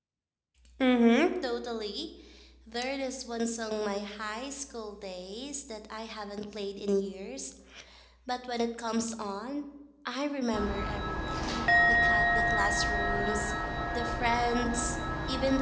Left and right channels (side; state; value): both; identical; correlation 1.00